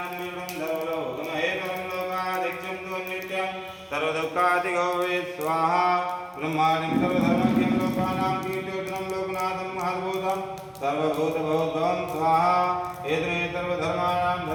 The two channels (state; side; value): identical; both; correlation 1.00